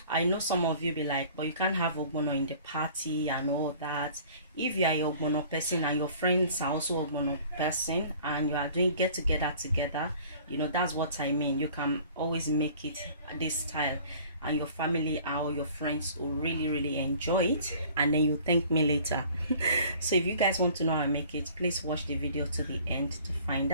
I know some of you be like, but you can't have ogbono in the party and all that. If you are a ogbono person and your friends are also ogbono person and you are doing get together, you know, that's what I mean. You can always make it this style and your family or your friends will really enjoy it, and then you thank me later. So if you guys want to know how I make it, please watch the video to the end to find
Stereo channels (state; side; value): inverted; both; correlation -0.50